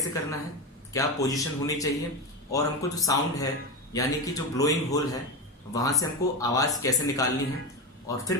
करना है, क्या पोजीशन होनी चाहिए, और हमको जो साउंड है यानी कि जो ब्लोइंग होल है वहां से हमको आवाज कैसे निकालनी है। और फिर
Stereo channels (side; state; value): both; normal; correlation 0.17